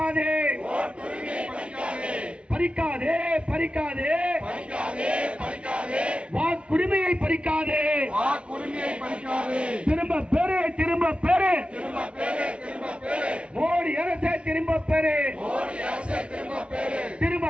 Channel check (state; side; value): late; left; 0.059 ms